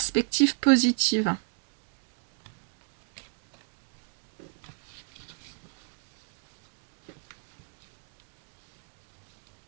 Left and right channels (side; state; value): left; quieter; 38.1 dB